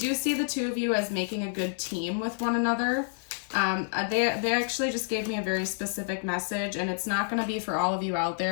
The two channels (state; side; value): silent; right; digital silence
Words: see the two of you as making a good team with one another. They actually just gave me a very specific message, and it's not going to be for all of you out